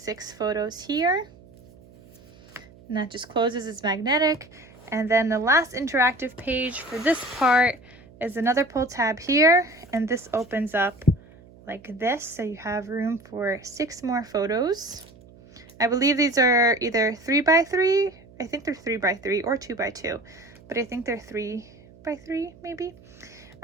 photos here. And that just closes, it's magnetic. And then the last interactive page for this part is another pull tab here, and this opens up like this, so you have room for 6 more photos. I believe these are either 3x3, I think they're 3x3 or 2x2, but I think they're 3x3 maybe.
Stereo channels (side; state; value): right; noise; hum, 24 dB below the sound